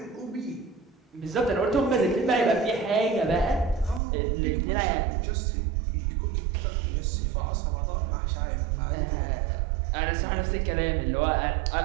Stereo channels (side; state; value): left; drops out; at 4.0 s